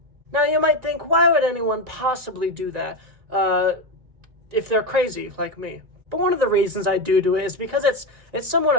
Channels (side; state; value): left; late; 1.9 ms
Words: Now, you might think, why would anyone possibly do that? If they're crazy like me. But one of the reasons I do it is because it's somewhat